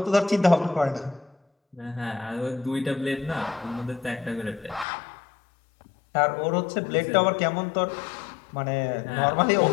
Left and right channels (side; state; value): right; drops out; at 4.9 s